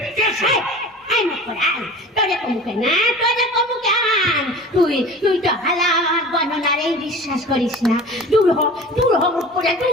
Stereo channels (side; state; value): both; normal; correlation 0.39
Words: কে সে? আয় মুখে আয়, তোরে কমুকে না, তোরে কমুকে আন। তুই তো হালা আমার গণনারে বিশ্বাস করিস না। দূর হ, দূর হ, মুখপুরে